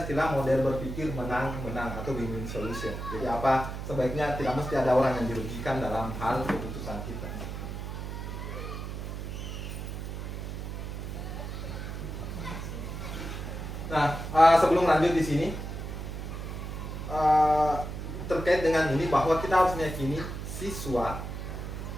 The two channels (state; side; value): noise; right; hum, 6 dB below the sound